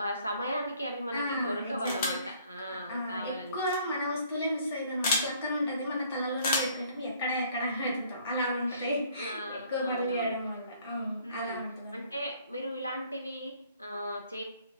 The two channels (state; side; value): inverted; both; correlation -0.60